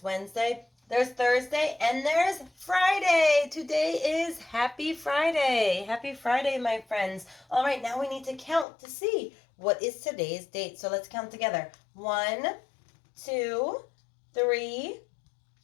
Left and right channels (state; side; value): drops out; right; at 8.7 s